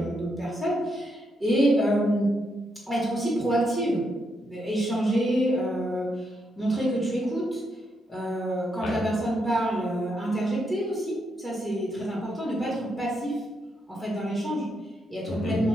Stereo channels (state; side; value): normal; both; correlation 0.80